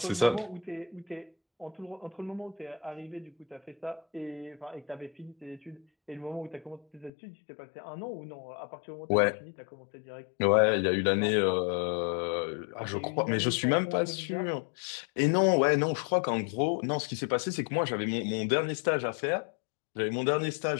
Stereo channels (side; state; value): right; drops out; at 7.1 s